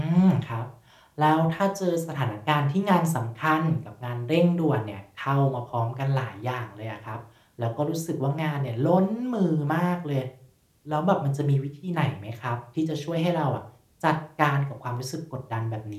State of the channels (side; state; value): both; identical; correlation 1.00